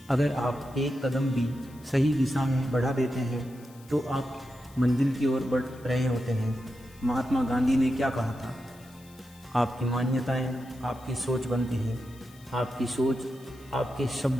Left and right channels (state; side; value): noise; left; hiss, 25 dB below the sound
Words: अगर आप एक कदम भी सही दिशा में बढ़ा देते हैं तो आप मंजिल की ओर बढ़ रहे होते हैं। महात्मा गांधी ने क्या कहा था? आपकी मान्यताएं आपकी सोच बनती हैं, आपकी सोच आपके